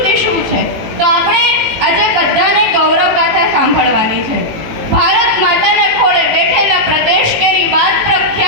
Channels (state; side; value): late; left; 18 ms